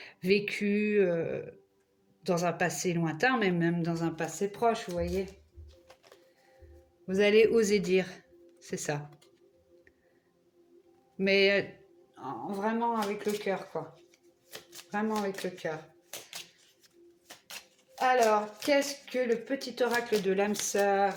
vécu dans un passé lointain, mais même dans un passé proche, vous voyez. Vous allez oser dire, c'est ça. Mais vraiment avec le cœur, quoi. Vraiment avec le cœur. Alors, qu'est-ce que le petit oracle de l'âme sœur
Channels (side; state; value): both; identical; correlation 1.00